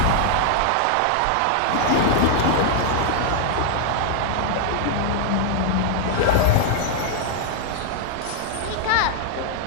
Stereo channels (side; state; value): both; different; correlation 0.00